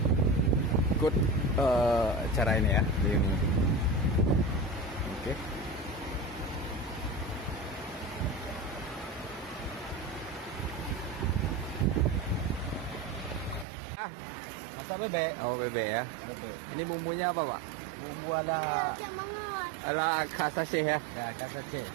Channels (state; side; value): drops out; left; at 13.7 s